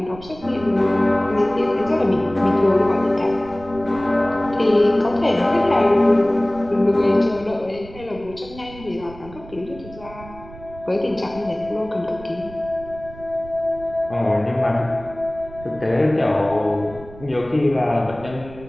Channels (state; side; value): noise; right; rumble, 18 dB below the sound